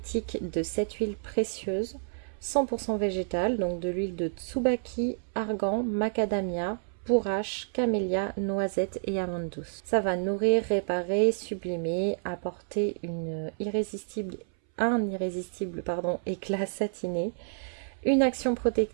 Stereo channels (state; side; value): silent; left; 58 dB below the other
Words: de 7 huiles précieuses 100% végétales, donc de l'huile de tsubaki, argan, macadamia, bourrache, camélia, noisette et amande douce. Ça va nourrir, réparer, sublimer, apporter un irrésistible éclat satiné, une action